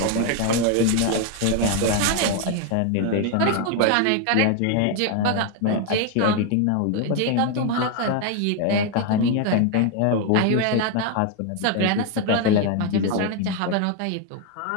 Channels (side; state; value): both; different; correlation 0.01